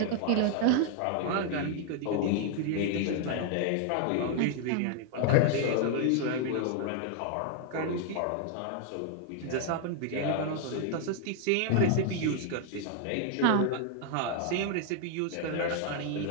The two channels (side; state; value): both; different; correlation 0.00